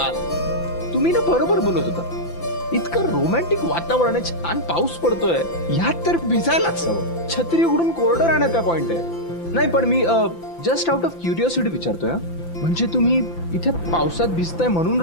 तुम्ही ना बरोबर बोलत होता. इतकं रोमॅन्टिक वातावरण आहे, छान पाऊस पडतोय, ह्यात तर भिजायलाच हवं. छत्री उघडून कोरडं राहण्याचा पॉइंट आहे. नाही पण मी जस्ट आउट ऑफ क्युरिओसिटी विचारतोय. म्हणजे तुम्ही इथे पावसात भिजताय म्हणून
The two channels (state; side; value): late; right; 5.9 ms